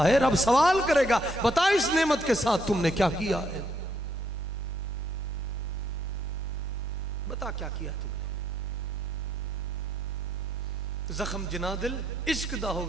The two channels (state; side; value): normal; both; correlation 0.72